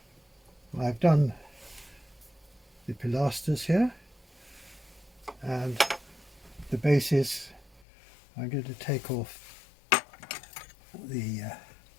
I've done the pilasters here, and the bases I'm going to take off the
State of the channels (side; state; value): right; drops out; at 7.9 s